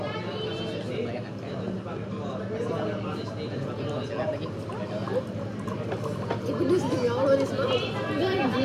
Ini pedes demi Allah nih semua. Enggak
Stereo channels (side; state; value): both; identical; correlation 1.00